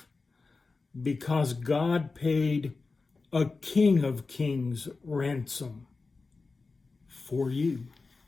because God paid a King of Kings ransom for you.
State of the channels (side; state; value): right; quieter; 4.0 dB